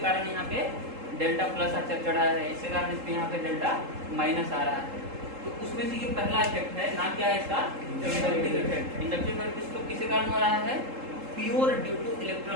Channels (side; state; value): left; late; 3.7 ms